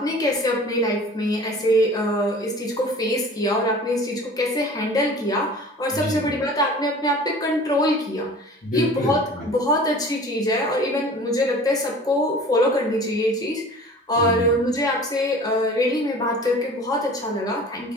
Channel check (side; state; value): both; normal; correlation 0.43